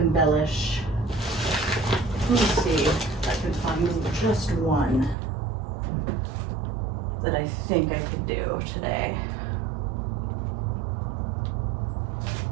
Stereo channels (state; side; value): drops out; left; at 5.2 s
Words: Let me see if I can find just one that I think I could do today.